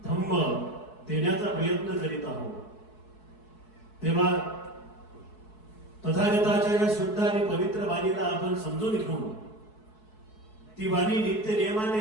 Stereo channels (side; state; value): right; late; 4.7 ms